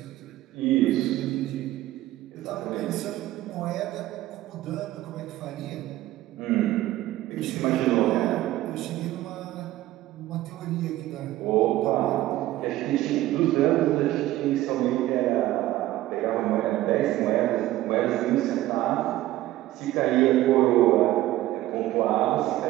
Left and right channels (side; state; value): left; quieter; 15.5 dB